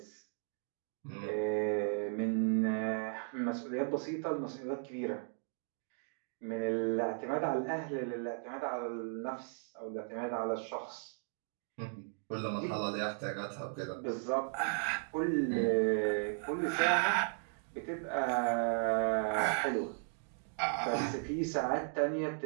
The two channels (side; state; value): left; silent; 54 dB below the other